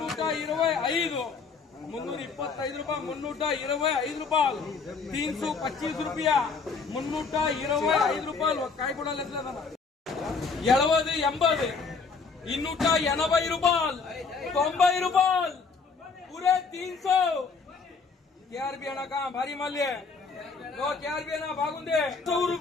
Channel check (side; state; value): right; quieter; 4.9 dB